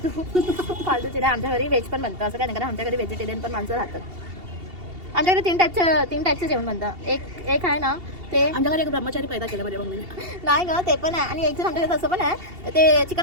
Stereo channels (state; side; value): late; left; 2.7 ms